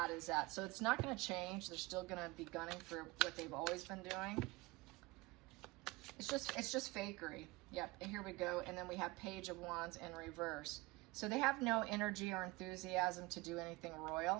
is that. So it's not going to change. They're still going to be gunning for what they've always been doing. It's just fakery. Yep, and here we go. And then we have Page of Wands in reverse. So they have no energy or enthusiasm to do anything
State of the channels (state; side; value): quieter; left; 22.4 dB